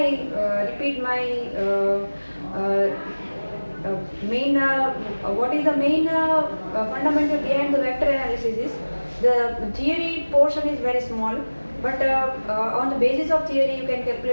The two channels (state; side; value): inverted; both; correlation -1.00